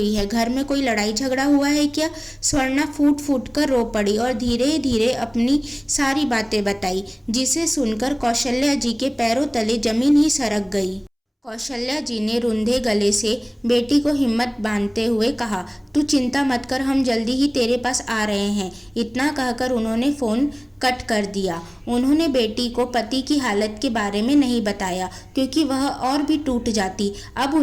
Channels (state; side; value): identical; both; correlation 1.00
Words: है, घर में कोई लड़ाई झगड़ा हुआ है क्या। स्वर्णा फूट फूट कर रो पड़ी और धीरे धीरे अपनी सारी बातें बताई, जिसे सुनकर कौशल्या जी के पैरों तले जमीन ही सरक गई। कौशल्या जी ने रुंधे गले से बेटी को हिम्मत बांधते हुए कहा, तू चिंता मत कर, हम जल्दी ही तेरे पास आ रहे हैं। इतना कहकर उन्होंने फ़ोन कट कर दिया। उन्होंने बेटी को पति की हालत के बारे में नहीं बताया क्योंकि वह और भी टूट जाती। अब